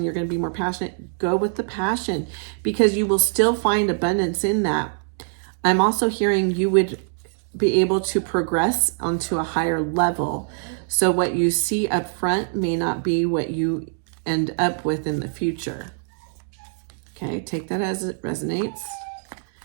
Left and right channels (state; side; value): silent; left; digital silence